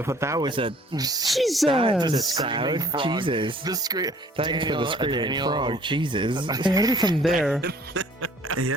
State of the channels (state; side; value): normal; both; correlation 0.55